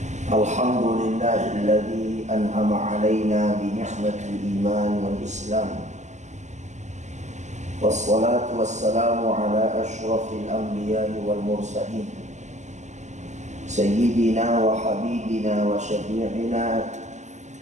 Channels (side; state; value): left; late; 0.34 ms